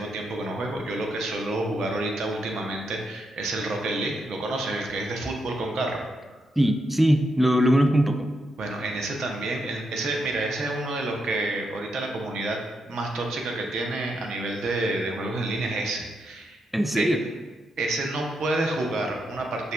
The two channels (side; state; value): both; normal; correlation 0.82